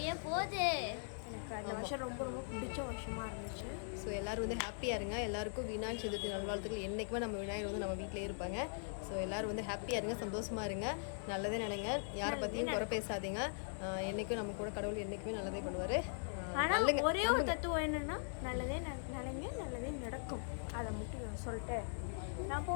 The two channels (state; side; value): silent; right; 51 dB below the other